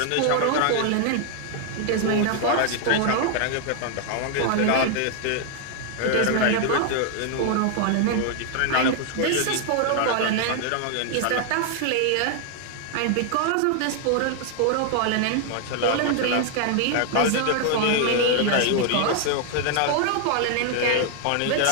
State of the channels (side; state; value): both; different; correlation 0.00